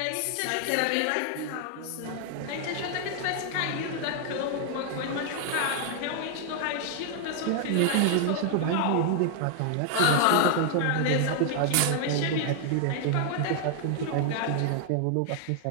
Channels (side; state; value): both; different; correlation 0.00